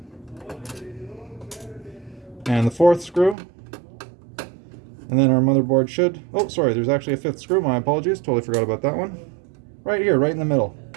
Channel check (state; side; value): drops out; left; at 3.4 s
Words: and the 4th screw, and then our motherboard should, oh sorry, there's actually a 5th screw, my apologies, totally forgot about that one. Right here, right in the middle.